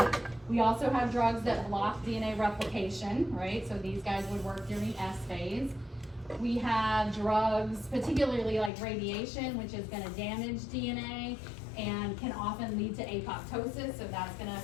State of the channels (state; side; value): drops out; right; at 8.7 s